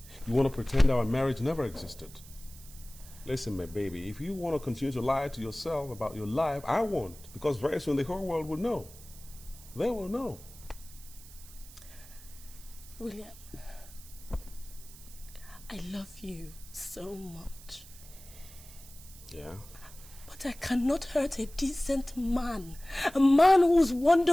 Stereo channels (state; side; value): noise; right; hiss, 19 dB below the sound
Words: You want to pretend our marriage never existed? Listen, my baby, if you want to continue to lie to yourself about your life, I won't. Because very soon the whole world will know. They will know. William, I love you so much. Yeah? But I cannot hurt a decent man. A man who's